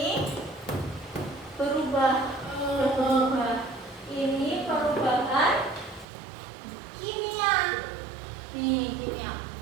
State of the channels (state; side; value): drops out; left; at 6.1 s